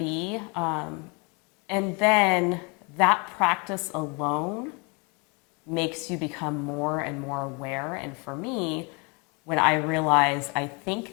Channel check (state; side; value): quieter; right; 31.7 dB